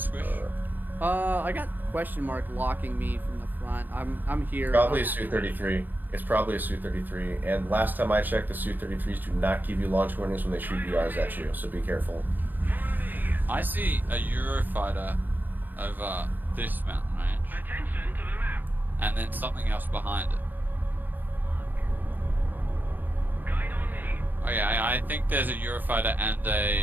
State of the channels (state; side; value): late; left; 0.087 ms